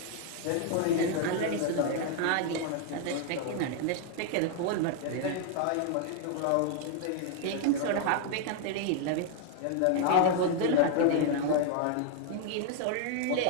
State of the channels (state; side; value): different; both; correlation 0.00